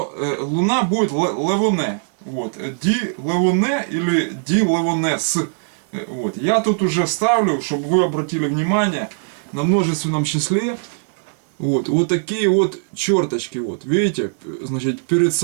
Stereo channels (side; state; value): left; silent; digital silence